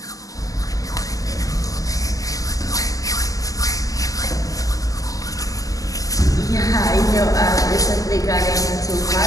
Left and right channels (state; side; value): late; right; 0.17 ms